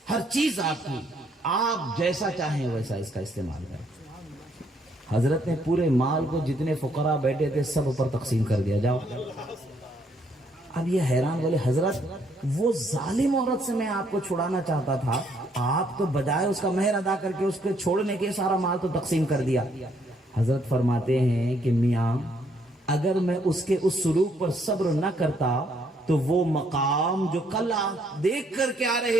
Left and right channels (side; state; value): both; normal; correlation 0.69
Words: ہر چیز آپ کی، آپ جیسا چاہیں ویسا اس کا استعمال کریں۔ حضرت نے پورے مال کو جتنے فقراء بیٹھے تھے سب پر تقسیم کر دیا، جاؤ۔ اب یہ حیران بولے حضرت وہ ظالم عورت سے میں آپ کو چھڑانا چاہتا تھا، آپ تو بجائے اس کا مہر ادا کر کے اس کے چھوڑنے کے سارا مال تو تقسیم کر دیا۔ حضرت فرماتے ہیں کہ میاں اگر میں اس کے اس سلوک پر صبر نہ کرتا تو وہ مقام جو کل آپ دیکھ کر کے آ